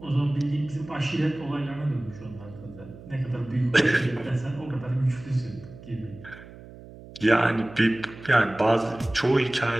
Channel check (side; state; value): right; noise; hum, 18 dB below the sound